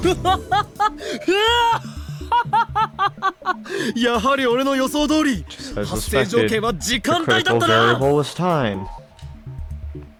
やはり俺の予想通り Just as 発生条 suspected, 件は時 the 間帯だ critical ったな variable was time. I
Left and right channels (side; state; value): both; identical; correlation 1.00